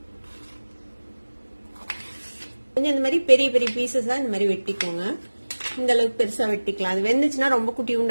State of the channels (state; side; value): inverted; both; correlation -1.00